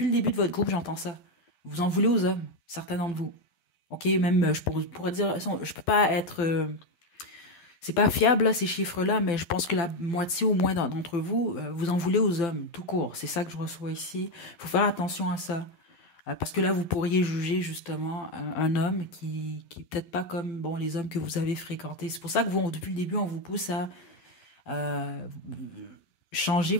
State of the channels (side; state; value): right; late; 11 ms